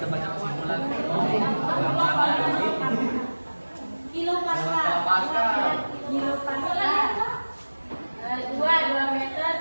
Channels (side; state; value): both; inverted; correlation -1.00